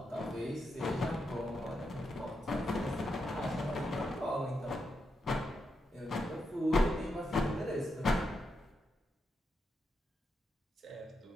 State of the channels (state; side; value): normal; both; correlation 0.84